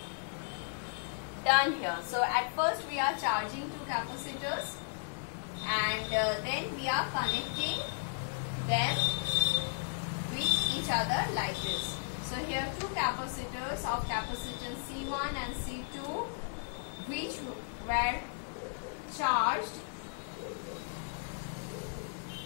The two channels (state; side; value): silent; right; digital silence